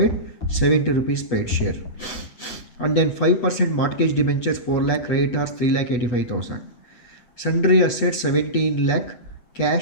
70 rupees paid share. And then 5% mortgage debentures 4 lakh, creditors 3,85,000. Sundry assets 17 lakh,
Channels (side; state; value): right; late; 8.1 ms